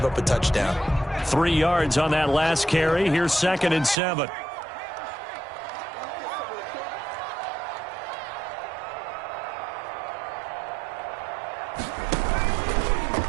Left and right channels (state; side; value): drops out; left; at 4.0 s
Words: up a touchdown. 3 yards on that last carry. Here's 2nd and 7.